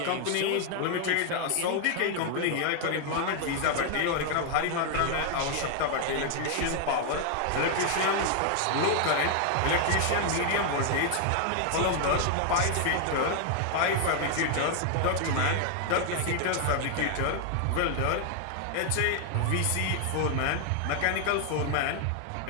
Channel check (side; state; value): both; different; correlation 0.00